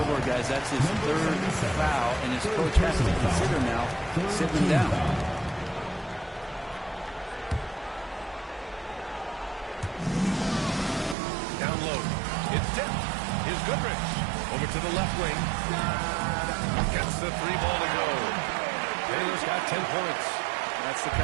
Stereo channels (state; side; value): drops out; left; at 11.2 s